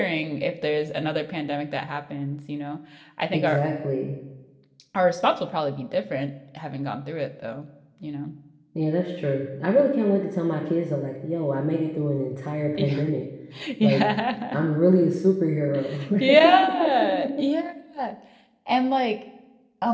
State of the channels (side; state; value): both; identical; correlation 1.00